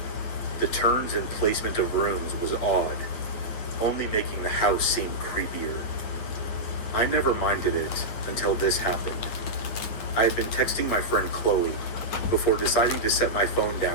The turns and placement of rooms was odd, only making the house seem creepier. I never minded it until this happened. I had been texting my friend Chloe before deciding to set my phone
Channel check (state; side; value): late; right; 9.4 ms